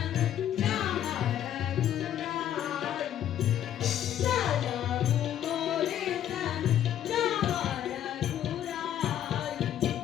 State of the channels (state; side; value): quieter; right; 10.9 dB